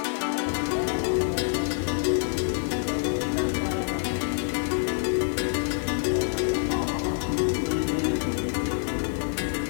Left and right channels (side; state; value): right; silent; 58 dB below the other